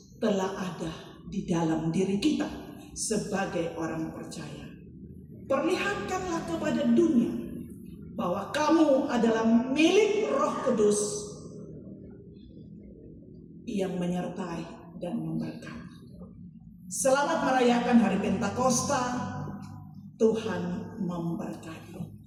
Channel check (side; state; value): both; identical; correlation 1.00